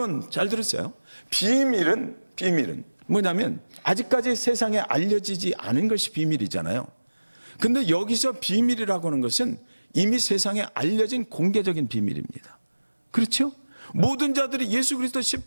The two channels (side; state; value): both; inverted; correlation -1.00